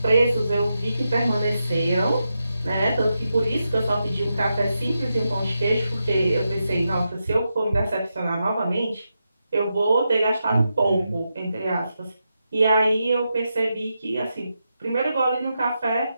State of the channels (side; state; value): both; inverted; correlation -0.87